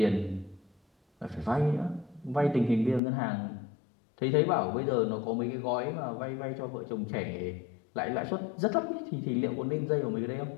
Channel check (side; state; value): right; drops out; at 3.0 s